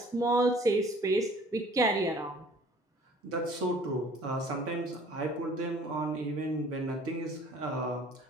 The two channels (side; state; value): both; normal; correlation 0.52